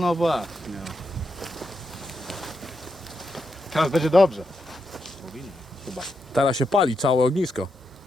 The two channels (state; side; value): normal; both; correlation 0.84